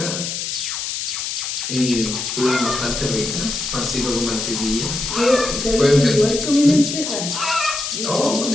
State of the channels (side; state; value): left; noise; hiss, 4 dB below the sound